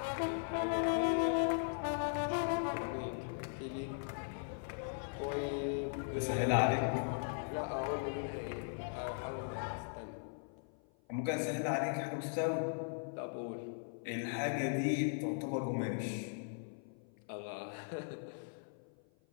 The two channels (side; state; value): right; silent; 52 dB below the other